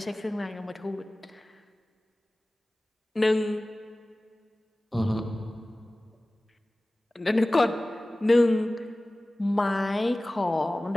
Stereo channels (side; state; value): both; normal; correlation 0.98